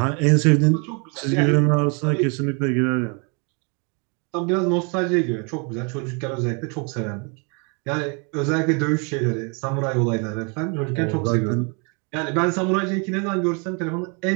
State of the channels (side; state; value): left; quieter; 34.7 dB